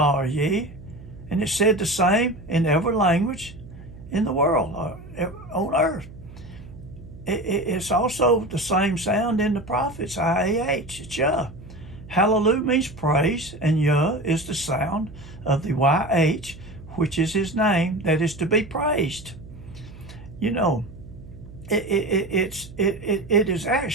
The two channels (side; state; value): right; noise; hum, 17 dB below the sound